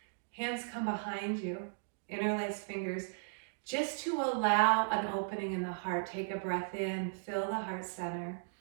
Hands come behind you, interlace fingers, just to allow an opening in the heart. Take a breath in, fill the heart center.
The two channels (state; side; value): silent; left; digital silence